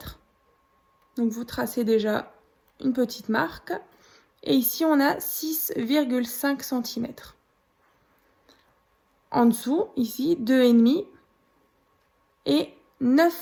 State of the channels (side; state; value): both; identical; correlation 1.00